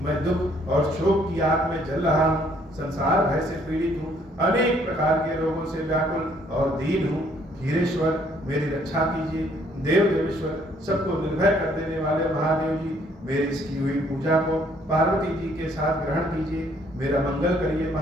मैं दुख और शोक की आग में जल रहा हूँ, संसार भय से पीड़ित हूँ, अनेक प्रकार के रोगों से व्याकुल और दीन हूँ। खीरेश्वर मेरी रक्षा कीजिए। देव देवेश्वर, सबको निर्भय कर देने वाले महादेव जी, मेरी इसकी हुई पूजा को पार्वती जी के साथ ग्रहण कीजिए। मेरा मंगल करिए।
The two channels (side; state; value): both; normal; correlation 0.64